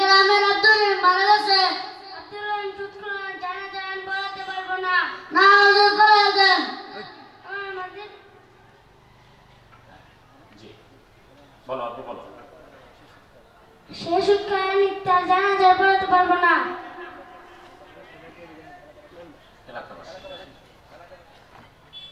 গ্রামের আব্দুর রহিম মারা গেছে। আব্দুর রহিম সুৎখোর, জানাজা আমি পড়াতে পারবো না। না হুজুর পড়ায় দেন। আমার মসজিদ জি বলো, আপনি বলো। সে সুৎখোর, আমি তার জানাজা পড়াতে পারবো না।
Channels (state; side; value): identical; both; correlation 1.00